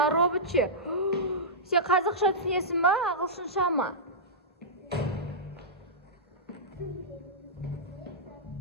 робот ше? Сен қазақша түсінесің ба, ағылшынша ма?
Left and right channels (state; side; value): normal; both; correlation -0.12